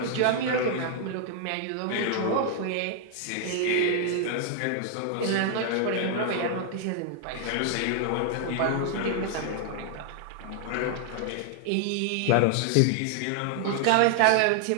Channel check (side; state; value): both; different; correlation 0.00